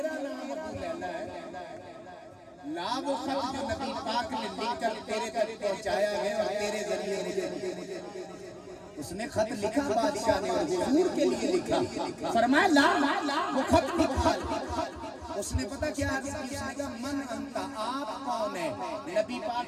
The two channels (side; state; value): both; identical; correlation 1.00